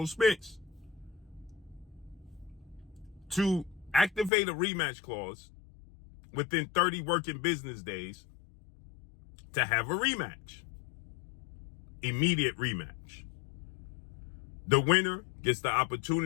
Spence, to activate a rematch clause within 30 working business days to have a rematch. Immediate rematch. The winner gets the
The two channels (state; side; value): drops out; right; at 4.3 s